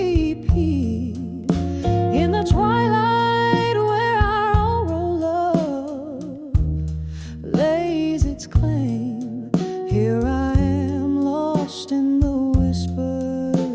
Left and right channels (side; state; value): both; identical; correlation 1.00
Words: In the twilight where our oral love lays its claim, here I am lost in the